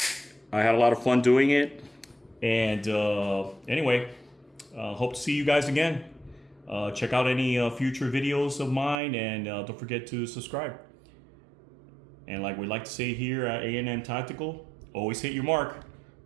I had a lot of fun doing it. And anyway, hope to see you guys again. Check out any future videos of mine, and don't forget to subscribe. And like we like to say here at A&M Tactical, always hit your mark.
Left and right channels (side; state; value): left; drops out; at 9.0 s